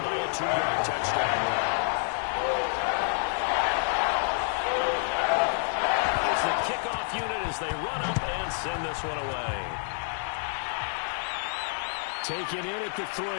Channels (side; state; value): right; silent; 59 dB below the other